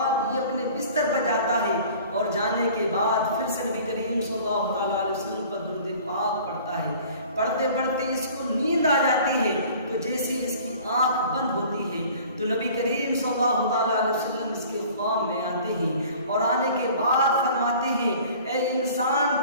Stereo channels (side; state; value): both; inverted; correlation -0.47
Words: یہ اپنے بستر پر جاتا ہے، اور جانے کے بعد پھر سے نبی کریم صلی اللہ علیہ وسلم پر درود پاک پڑھتا ہے، پڑھتے پڑھتے اس کو نیند آ جاتی ہے، تو جیسے اس کی آنکھ بند ہوتی ہے تو نبی کریم صلی اللہ علیہ وسلم اس کے خواب میں آتے ہیں، اور آنے کے بعد فرماتے ہیں، اے انسان